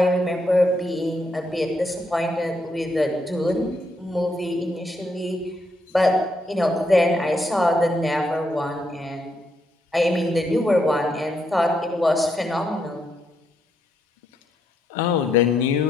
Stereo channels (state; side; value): normal; both; correlation 0.78